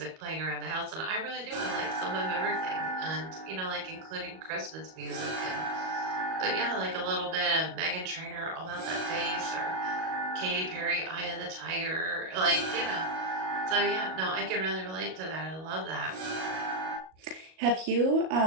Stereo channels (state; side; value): late; left; 38 ms